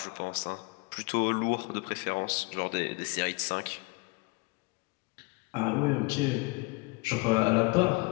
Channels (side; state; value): right; quieter; 27.2 dB